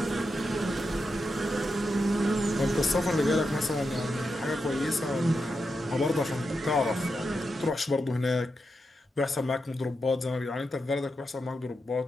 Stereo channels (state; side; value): normal; both; correlation 0.87